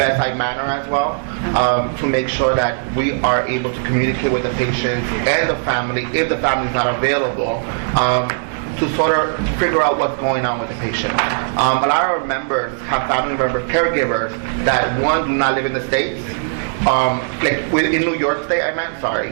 manner as well, to make sure that we are able to communicate with the patients and the family, if the family is not available, to sort of figure out what's going on with the patient. A lot of our members have family members, caregivers, that one, do not live in the States, like in New York State,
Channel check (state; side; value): silent; left; digital silence